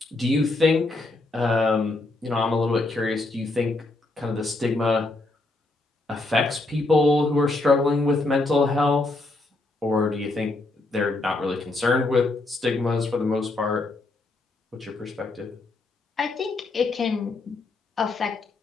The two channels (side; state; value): right; quieter; 3.1 dB